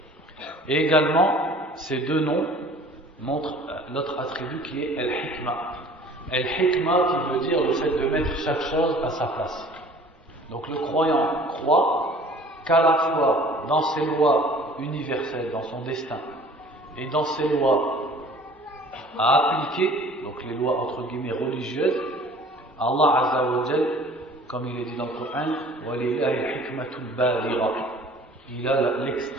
Et également, ces deux noms montrent l'autre attribut qui est Al-Hikmah. Al-Hikmah qui veut dire le fait de mettre chaque chose à sa place. Donc le croyant croit qu'à la fois dans ses lois universelles, dans son destin, et dans ses lois à appliquer, donc les lois entre guillemets religieuses, Allah Azza wa Jal, comme il est dit dans le Coran, وَلِلَّهِ الْحِكْمَةُ الْبَالِغَةُ, il a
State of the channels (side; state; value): both; normal; correlation 0.49